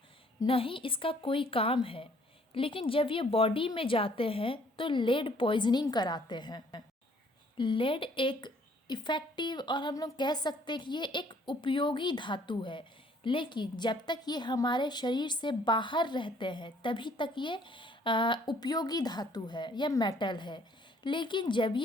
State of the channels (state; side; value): normal; both; correlation 0.61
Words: न ही इसका कोई काम है, लेकिन जब ये बॉडी में जाते हैं तो लेड पॉइजनिंग कराते हैं। लेड एक इफ़ेक्टिव और हम लोग कह सकते हैं कि ये एक उपयोगी धातु है, लेकिन जब तक ये हमारे शरीर से बाहर रहते हैं तभी तक ये उपयोगी धातु है या मेटल है। लेकिन जब